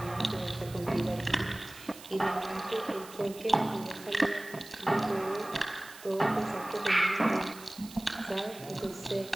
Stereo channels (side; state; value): right; noise; hiss, 17 dB below the sound